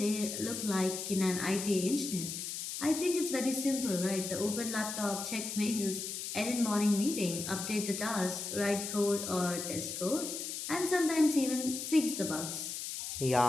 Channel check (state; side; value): noise; left; hiss, 5 dB below the sound